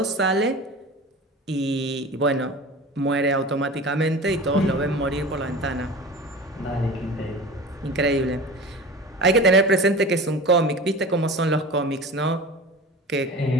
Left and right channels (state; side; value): normal; both; correlation 0.34